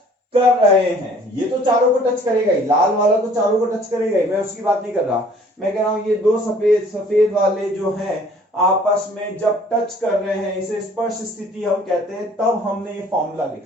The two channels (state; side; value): normal; both; correlation 0.55